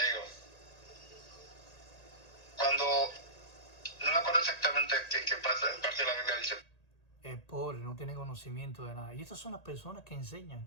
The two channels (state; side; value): late; right; 1.8 ms